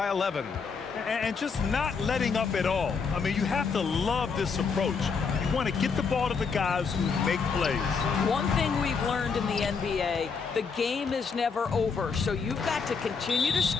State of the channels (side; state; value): right; quieter; 5.4 dB